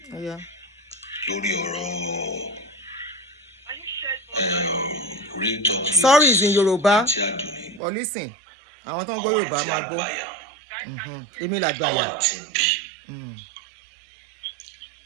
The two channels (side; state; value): left; drops out; at 7.8 s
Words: Yeah. Lórí ọ̀rọ̀ real talk. Sorry is in Yoruba. But listen, àwọn tó ń gbọ́ Yorùbá máa gbọ́. Èmi làgbàyà.